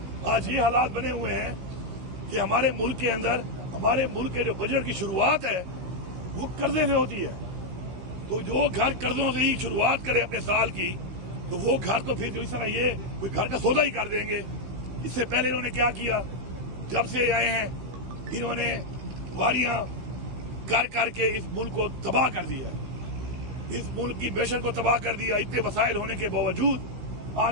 آج یہ حالات بنے ہوئے ہیں کہ ہمارے ملک کے اندر، ہمارے ملک کے جو بجٹ کی شروعات ہے وہ قرضے سے ہوتی ہے. تو جو گھر قرضوں سے ہی شروعات کرے اپنے سال کی، تو وہ گھر تو پھر جو اس طرح یہ کوئی گھر کا سودا ہی کر دیں گے. اس سے پہلے انہوں نے کیا کیا، جب سے آئے ہیں انہوں نے واریاں کر کے اس ملک کو تباہ کر دیا ہے، اس ملک کی معیشت کو تباہ کر دیا. اتنے وسائل ہونے کے باوجود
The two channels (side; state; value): left; late; 16 ms